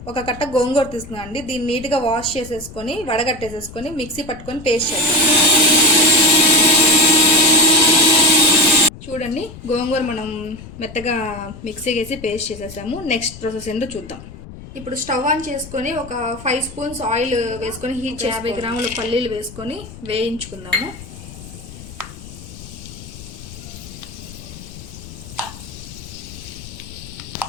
ఒక కట్ట గోంగూర తీసుకున్నాండి. దీన్ని నీట్గా వాష్ చేసేసుకొని వడగట్టేసేసుకొని మిక్సీ పట్టుకొని పేస్ట్ చేద్దాం. చూడండి, గోంగూర మనం మెత్తగా మిక్సీ వేసి పేస్ట్ చేసేసాము. నెక్స్ట్ ప్రాసెస్ ఏంటో చూద్దాం. ఇప్పుడు స్టవ్ ఆన్ చేసుకొని ఒక 5 స్పూన్స్ ఆయిల్ వేసుకొని హీట్ 50 గ్రాముల పల్లీలు వేసుకొని వేయించుకుందాము.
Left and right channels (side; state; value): left; noise; rumble, 15 dB below the sound